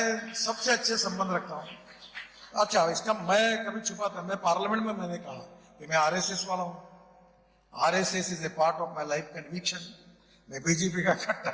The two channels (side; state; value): both; identical; correlation 1.00